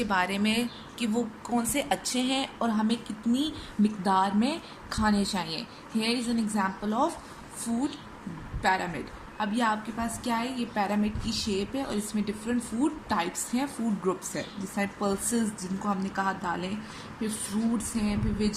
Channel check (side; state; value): both; identical; correlation 1.00